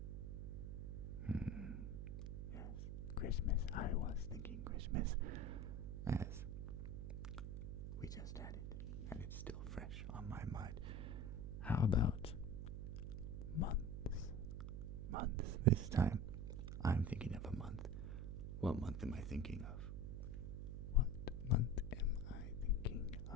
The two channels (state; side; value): noise; right; hum, 5 dB below the sound